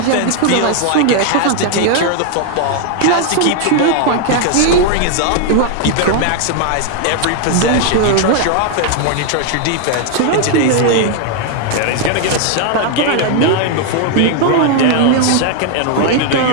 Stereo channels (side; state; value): both; different; correlation 0.00